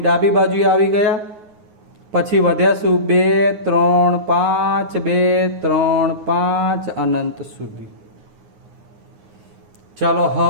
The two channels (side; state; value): left; late; 9.6 ms